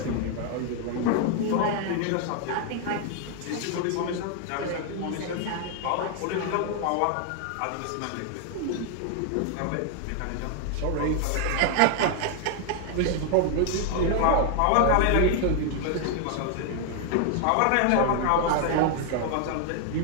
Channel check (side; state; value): both; different; correlation 0.00